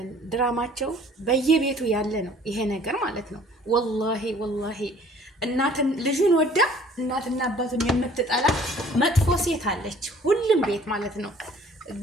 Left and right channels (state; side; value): normal; both; correlation 0.54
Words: ድራማቸው በየቤቱ ያለ ነው ይሄ ነገር ማለት ነው። ወላሂ ልጁን ወዳ እናትና አባቱን የምትጠላ መጥፎ ሴት አለች ሁሉም ቤት ማለት ነው።